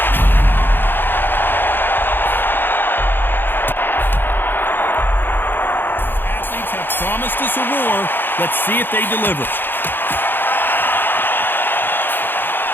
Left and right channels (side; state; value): right; late; 0.098 ms